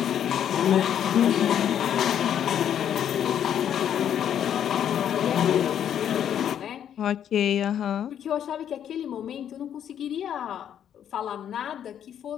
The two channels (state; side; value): quieter; right; 9.6 dB